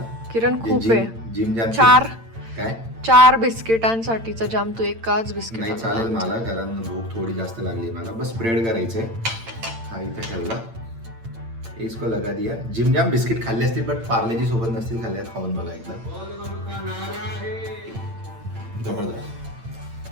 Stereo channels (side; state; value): left; late; 8.8 ms